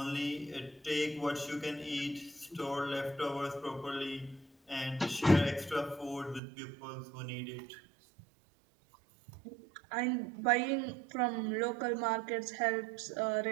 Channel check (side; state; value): left; drops out; at 6.4 s